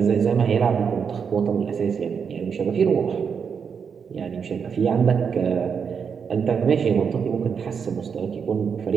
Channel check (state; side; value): quieter; left; 6.5 dB